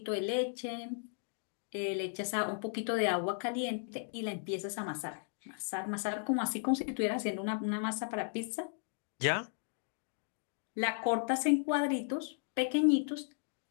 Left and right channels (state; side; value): silent; right; digital silence